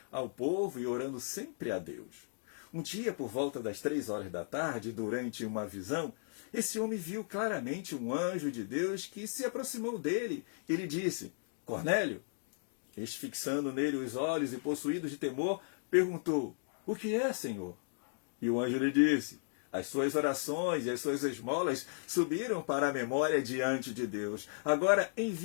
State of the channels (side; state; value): right; silent; digital silence